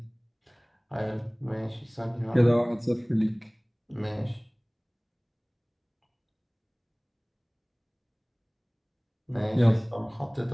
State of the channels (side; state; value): both; identical; correlation 1.00